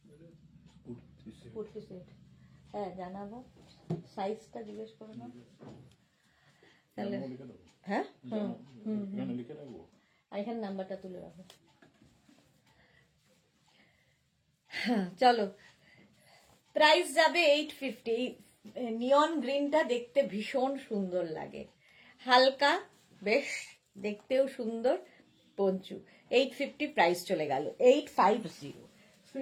কুর্তি সেট, হ্যাঁ জানাবো। সাইজটা জিজ্ঞেস করো না তাহলে। হ্যাঁ এখানে নাম্বারটা তুলে রাখো। হ্যাঁ চলো, প্রাইস যাবে 850। নিয়ন গ্রিনটা দেখতে ভীষণ সুন্দর লাগে, হালকা, বেশ দেখতেও সুন্দর। পঞ্চু 850, প্রাইস চলে গেল 850।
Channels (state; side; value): identical; both; correlation 1.00